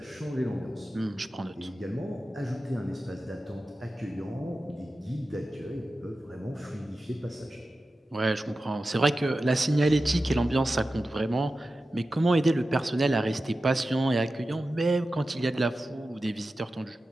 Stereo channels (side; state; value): both; normal; correlation 0.93